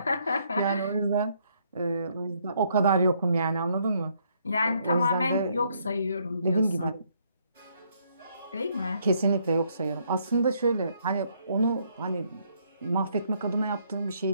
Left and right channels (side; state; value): both; inverted; correlation -0.70